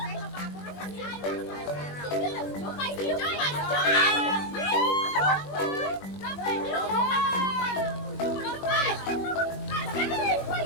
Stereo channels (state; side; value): late; right; 21 ms